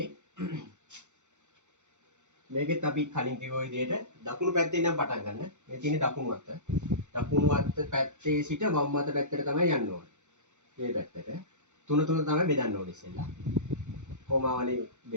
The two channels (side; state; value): left; late; 0.84 ms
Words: මේකෙත් අපි කලින් කිව්ව විදිහට දකුණු පැත්තේ ඉඳන් පටන් ගන්න. මේ තියෙන්නේ දකුණු අත. දකුණු අත පැත්තේ සිට වම් අත පැත්තට තමයි යන්න ඕනේ. මේ පැත්තට. තුන තමයි බෙදන්න ඕනේ ඉස්සෙල්ලා. කොමාවලින්